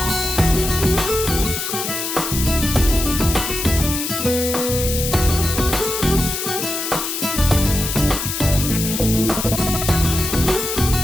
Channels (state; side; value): noise; left; hiss, 3 dB below the sound